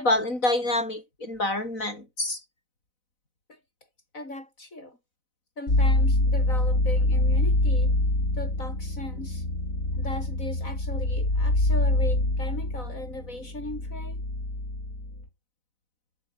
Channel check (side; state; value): right; late; 4.0 ms